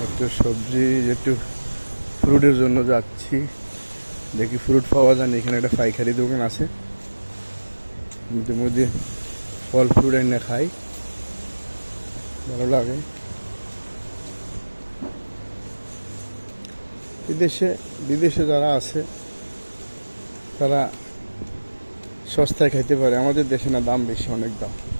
একটু সবজি, একটু ফ্রুটের জন্য যাচ্ছি, দেখি ফ্রুট পাওয়া যায় না। এখানে একটা পাইকারি দোকান আছে, মধ্যে ফল ফ্রুট এনে খাই, ভালো লাগে। বিদেশে বিদেশে যারা আছে তারা সস্তায় খাইতে পারে, আমাদের দেশে না, দাম বেশি, অনেক দাম।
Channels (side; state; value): both; inverted; correlation -1.00